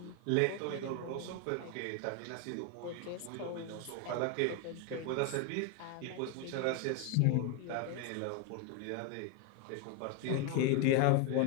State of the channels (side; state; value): both; different; correlation 0.01